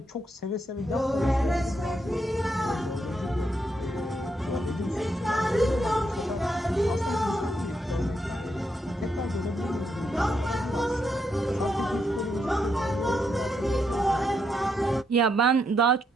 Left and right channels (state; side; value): normal; both; correlation 0.79